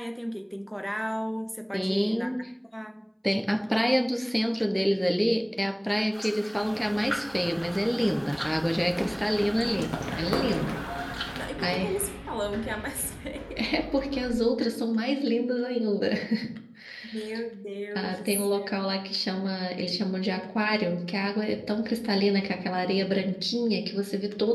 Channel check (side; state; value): both; identical; correlation 1.00